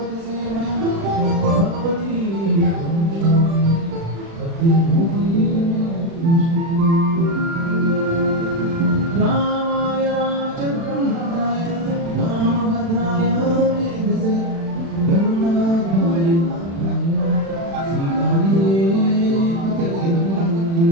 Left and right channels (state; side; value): late; left; 36 ms